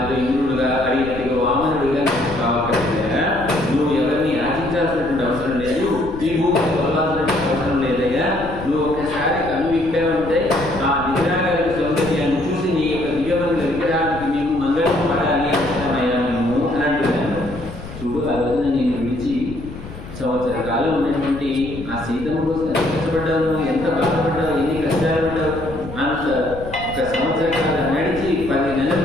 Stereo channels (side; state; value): left; noise; rumble, 12 dB below the sound